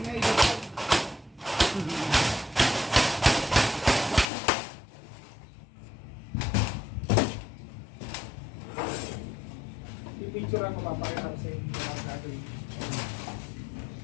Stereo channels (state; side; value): drops out; right; at 4.2 s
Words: na ilapag. I-picture ako, papakita ko sa inyo ang gagawin.